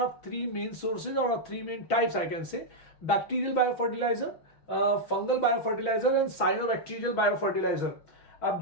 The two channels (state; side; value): late; right; 6.1 ms